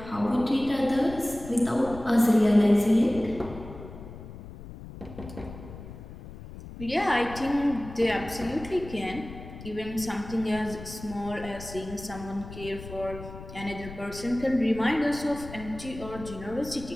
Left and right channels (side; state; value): left; noise; rumble, 13 dB below the sound